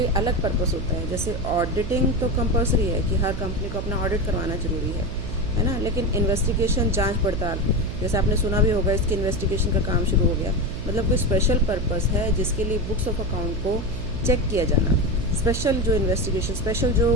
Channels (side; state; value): right; noise; hum, 6 dB below the sound